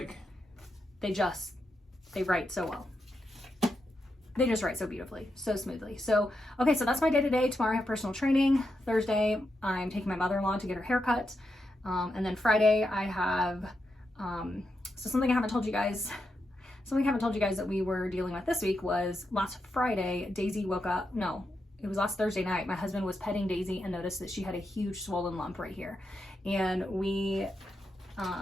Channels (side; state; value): both; normal; correlation 0.85